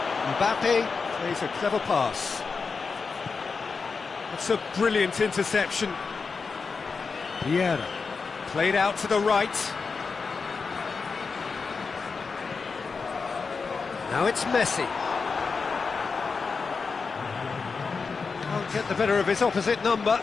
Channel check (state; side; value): quieter; right; 4.9 dB